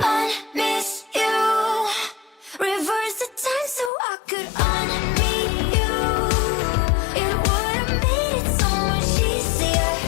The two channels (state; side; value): drops out; right; at 3.9 s